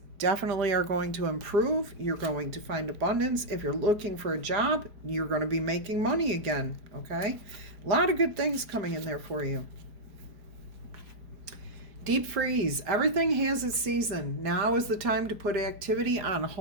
definitely are going to improve. You're going to find abundance. If you're looking for a job, you're going to be making money again. Okay? A lot of good things coming in there for you. Deep freeze. Everything has its season. Now is the time to put activity on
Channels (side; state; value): left; late; 5.0 ms